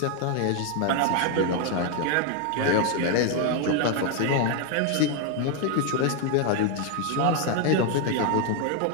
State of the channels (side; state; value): both; different; correlation 0.01